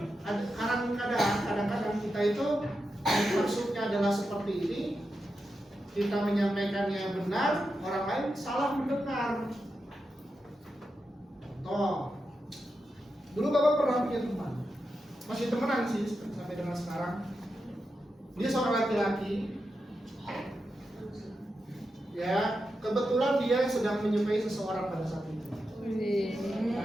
kadang-kadang kita itu maksudnya adalah seperti ini, kita menyampaikannya benar, orang lain salah mendengar. Contoh, dulu Bapak pernah punya teman, masih temenan sih sampai dengan sekarang. Dia seorang laki-laki, ya kebetulan dia sedang menyukai seseorang pada saat itu.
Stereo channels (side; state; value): both; normal; correlation 0.88